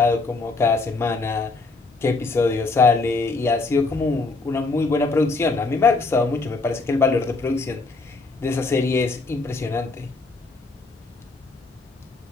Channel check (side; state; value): right; quieter; 3.7 dB